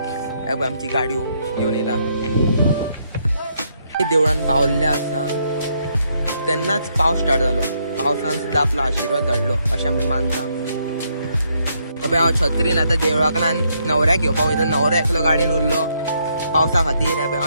आमची गाडयो घेवन येता देवळान पावल्ले आसा तेन्नाच पावस स्टार्ट जालो. पावसान सुद्धा आपलो आशीर्वाद धाडलो अशें आमी मानता. हांव छत्रीन आतां देवळाकडल्यान न्हवऱ्याक घेवपाक वयता. न्हवरो एकलो गाडयेन उरलो पावसा खातीर.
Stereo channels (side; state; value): both; inverted; correlation -0.74